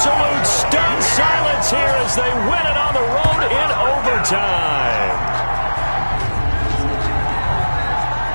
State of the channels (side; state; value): both; inverted; correlation -1.00